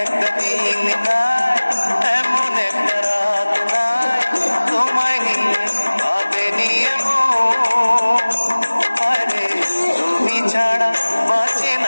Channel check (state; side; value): inverted; both; correlation -1.00